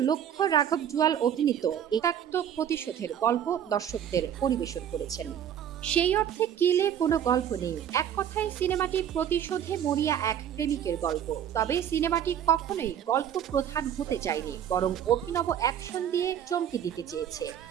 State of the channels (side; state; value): left; quieter; 9.6 dB